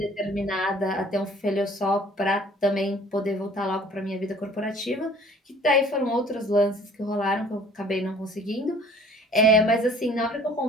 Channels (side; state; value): both; normal; correlation 0.52